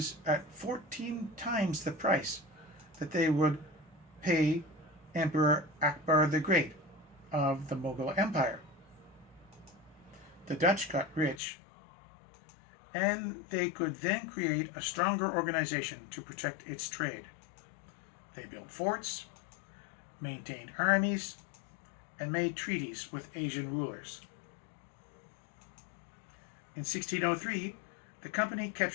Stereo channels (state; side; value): drops out; right; at 11.4 s